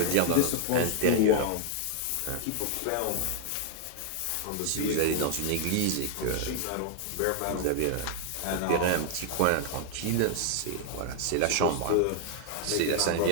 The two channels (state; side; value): different; both; correlation 0.00